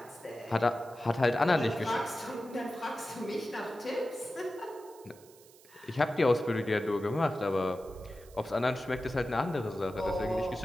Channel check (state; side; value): noise; right; hiss, 24 dB below the sound